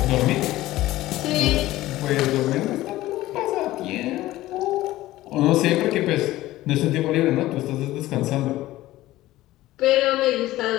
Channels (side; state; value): right; quieter; 16.4 dB